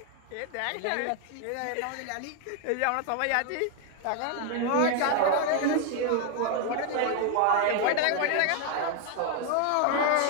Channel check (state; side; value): different; both; correlation 0.01